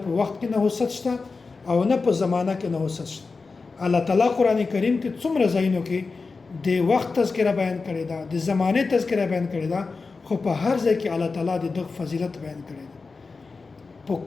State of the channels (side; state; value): right; quieter; 4.3 dB